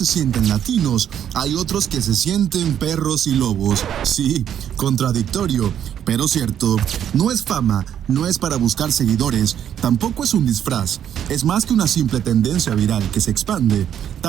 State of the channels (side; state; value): left; quieter; 9.7 dB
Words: sienten latinos, hay otros que se sienten perros y lobos. Sí, contradictorio, pero cierto. No es fama, no es para buscar seguidores, tampoco es un disfraz. Es más que una simple tendencia viral que se expande,